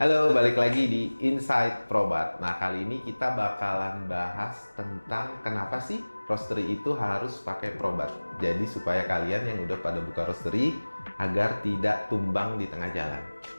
Halo, balik lagi di Inside Probat. Nah, kali ini kita bakalan bahas tentang kenapa sih roastery itu harus pakai Probat. Jadi supaya kalian yang udah pada buka roastery agar tidak tumbang di tengah jalan.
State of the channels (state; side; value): inverted; both; correlation -1.00